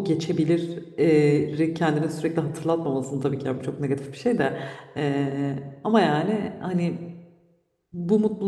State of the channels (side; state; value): both; identical; correlation 1.00